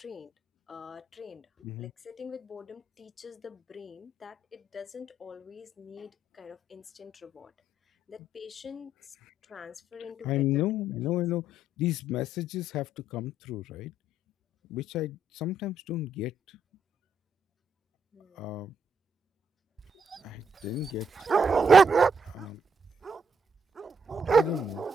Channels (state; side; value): normal; both; correlation 0.73